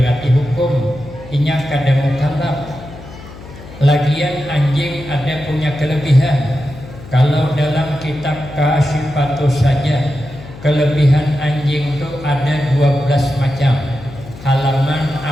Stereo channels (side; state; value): left; noise; hum, 16 dB below the sound